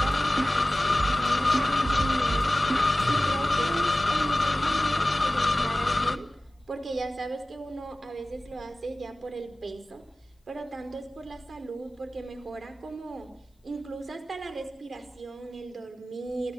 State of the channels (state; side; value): normal; both; correlation 0.97